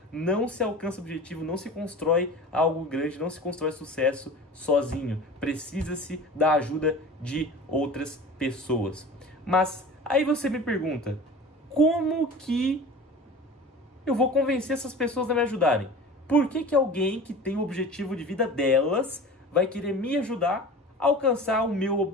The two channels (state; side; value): normal; both; correlation 0.37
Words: Não se alcança o objetivo, não se constrói algo grande, não se constrói sucesso sozinho. Precisa-se da ajuda de outras pessoas. Mas aí você me pergunta, como que eu vou convencer essas pessoas a me ajudarem? Por que alguém que tem o objetivo de vida delas vai querer me ajudar a alcançar o